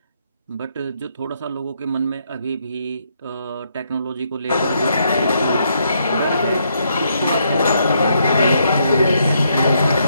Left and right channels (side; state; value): both; inverted; correlation -0.75